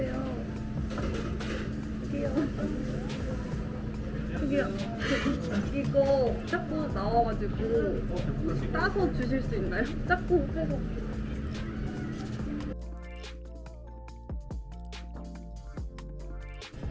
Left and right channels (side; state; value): both; identical; correlation 1.00